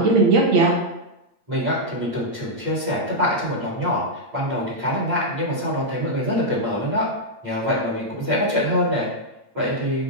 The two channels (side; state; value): left; late; 8.6 ms